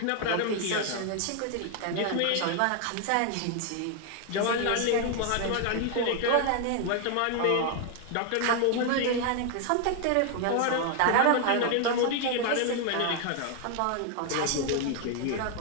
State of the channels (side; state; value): both; different; correlation 0.01